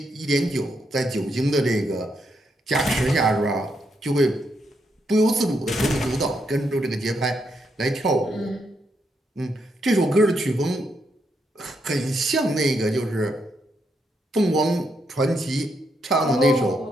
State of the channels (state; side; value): normal; both; correlation 0.79